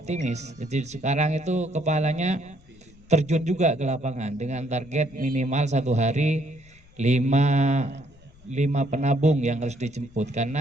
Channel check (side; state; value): left; noise; rumble, 26 dB below the sound